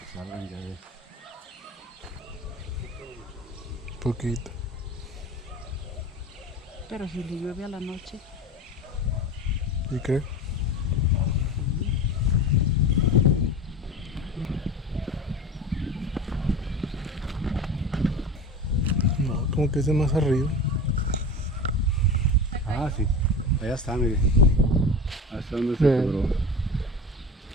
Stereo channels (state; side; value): normal; both; correlation 0.31